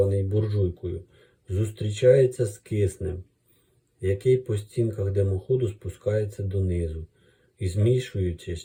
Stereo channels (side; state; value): both; identical; correlation 1.00